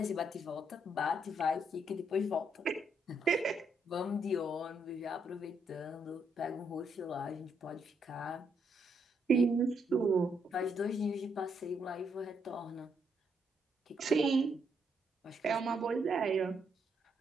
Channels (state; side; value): normal; both; correlation 0.75